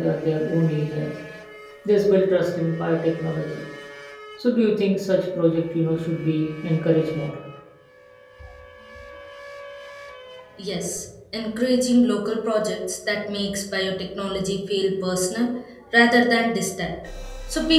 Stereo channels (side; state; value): both; identical; correlation 1.00